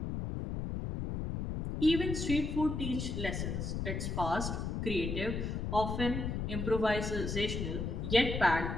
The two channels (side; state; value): left; noise; rumble, 3 dB below the sound